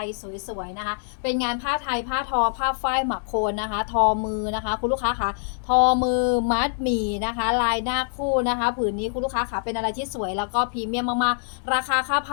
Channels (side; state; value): right; silent; digital silence